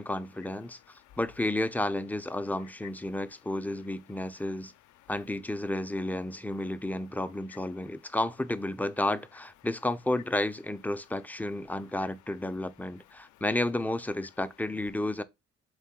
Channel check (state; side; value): normal; both; correlation 0.86